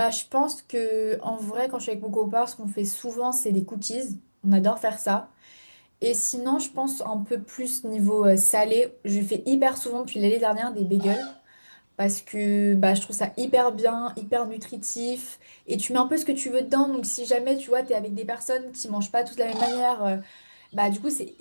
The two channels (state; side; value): inverted; both; correlation -1.00